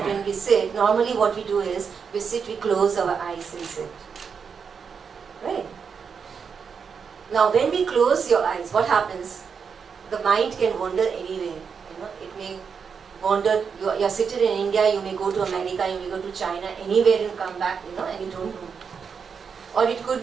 when we sit, normally what we do is, we sit, we close our eyes and sit. Right? Now when we close your eyes, what happens? The mind can wander anywhere. It may wander, you're seated in India, you may go to America, you may go to China, anywhere and come back, and you don't know. Or it could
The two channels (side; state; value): left; quieter; 6.2 dB